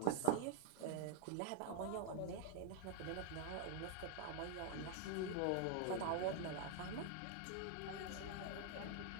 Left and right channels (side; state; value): both; different; correlation 0.00